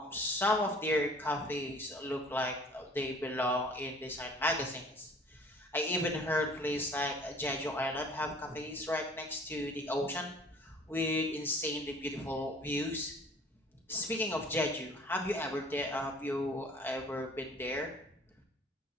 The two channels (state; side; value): normal; both; correlation 0.51